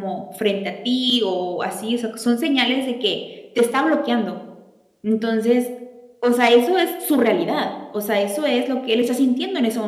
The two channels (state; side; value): identical; both; correlation 1.00